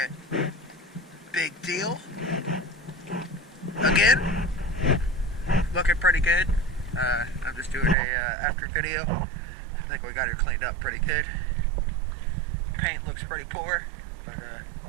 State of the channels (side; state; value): left; drops out; at 8.0 s